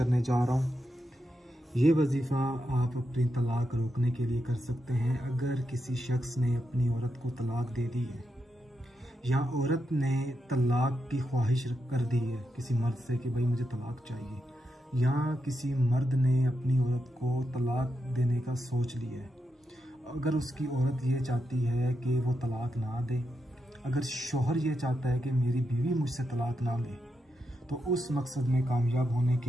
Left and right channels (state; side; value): normal; both; correlation 0.85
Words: जा रहा हूँ। ये वजीफ़ा आप अपनी तलाक रोकने के लिए कर सकते हैं। अगर किसी शख्स ने अपनी औरत को तलाक दे दी है या औरत ने तलाक की ख्वाहिश कर दी है किसी मर्द से कि भाई मुझे तलाक चाहिए, या किसी मर्द ने अपनी औरत को तलाक देने का सोच लिया है, अगर उसकी औरत ये चाहती है कि वो तलाक ना दे, अगर शौहर ये चाहता है कि मेरी बीवी मुझसे तलाक ना ले, तो उस मकसद में कामयाब होने